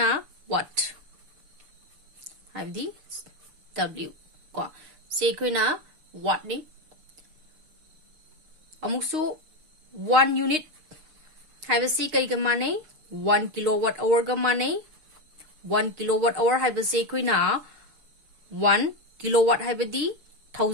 वाट हाइबदी W को से कोइना वाट नि अमुसु 1 यूनिट हाइबसी कई ग माने 1 किलोवाट आवर ग माने 1 किलोवाट आवर हाइबसे कोइना 1 किलोवाट हाइबदी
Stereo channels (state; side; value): late; left; 6.4 ms